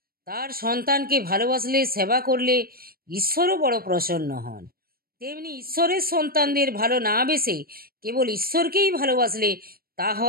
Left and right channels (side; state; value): left; late; 0.43 ms